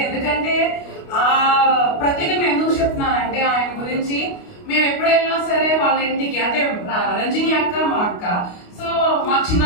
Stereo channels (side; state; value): right; late; 29 ms